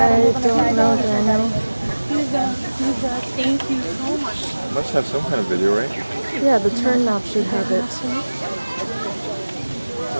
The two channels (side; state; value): both; inverted; correlation -1.00